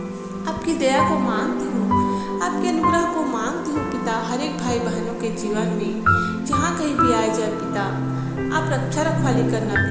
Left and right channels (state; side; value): identical; both; correlation 1.00